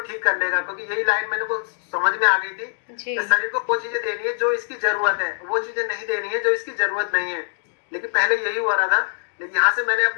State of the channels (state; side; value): silent; right; digital silence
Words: कर लेगा। क्योंकि यही लाइन मैंने को समझ में आ गई थी कि शरीर को वो चीजें देनी है जो इसकी जरूरत है, वो चीजें नहीं देनी है जो इसकी जरूरत नहीं है। लेकिन पहले यही हो रहा था। लेकिन यहाँ से मैंने